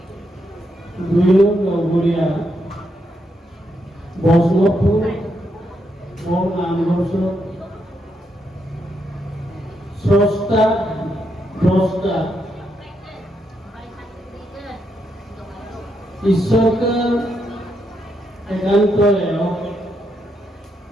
দুই গড়িয়া বৈষ্ণবপুর ও নামঘোষ স্রষ্টা দ্রষ্টা ঈশ্বরকে একান্ত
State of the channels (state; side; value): normal; both; correlation 0.80